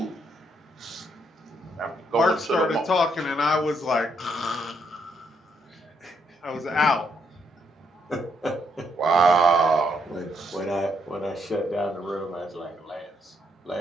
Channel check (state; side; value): normal; both; correlation 0.75